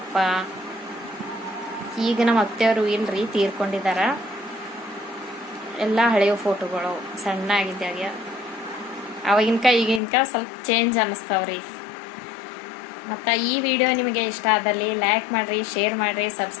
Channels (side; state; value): right; drops out; at 10.0 s